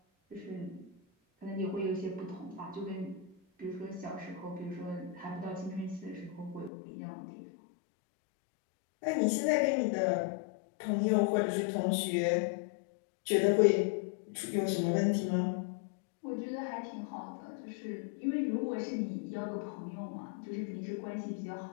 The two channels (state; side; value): drops out; right; at 6.7 s